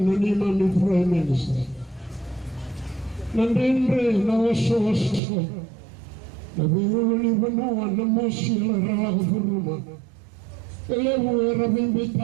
prime minister nandendre na oso na bingulu libanoa na mosi la ragu furuma elewu era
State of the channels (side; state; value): left; drops out; at 5.2 s